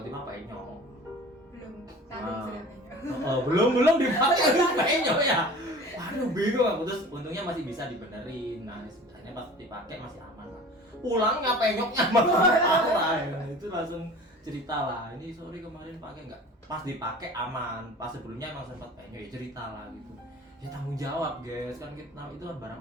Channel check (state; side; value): normal; both; correlation 0.41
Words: penyok. Belum tanggung sudah banyak. Belum dipakai terus penyok ya. Waduh bingung aku, terus untungnya masih bisa dibenerin. Nah sebenarnya pas dipakai masih aman lah. Pulangnya penyoknya parah ya. Itu langsung cerita lah. Ini sorry kemarin pakai nggak? Pas dipakai aman. Pas sebelumnya emang sempat penyok ya cerita lah gitu. Ya tanggung jawab guys, kan kita itu kan barang